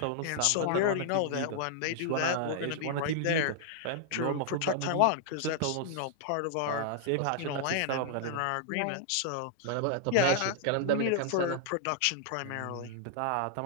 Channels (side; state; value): both; different; correlation -0.01